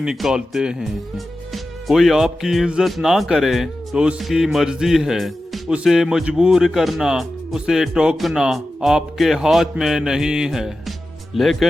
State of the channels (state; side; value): normal; both; correlation 0.93